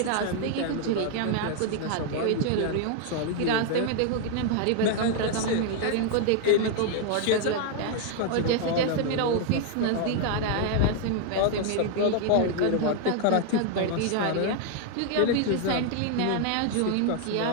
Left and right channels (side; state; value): both; different; correlation 0.00